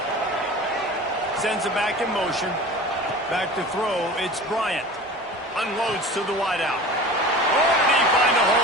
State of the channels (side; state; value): both; normal; correlation 0.38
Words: Sends it back in motion. Back to throw. It's Bryant. Unloads to the wideout. Oh, did he find a